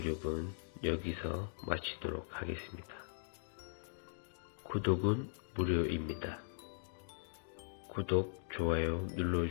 여기서 마치도록 하겠습니다. 구독은 무료입니다. 구독, 좋아요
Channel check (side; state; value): right; silent; digital silence